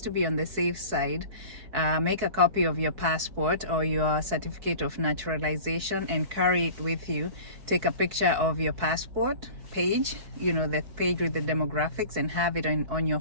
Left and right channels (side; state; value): left; late; 4.7 ms